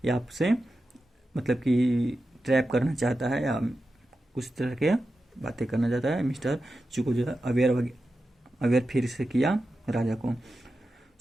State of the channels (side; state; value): both; normal; correlation 0.91